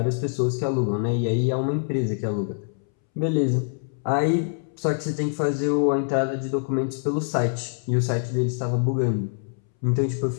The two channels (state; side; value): silent; right; 62 dB below the other